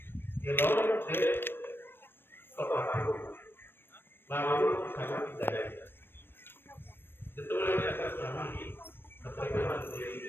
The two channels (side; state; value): right; late; 0.10 ms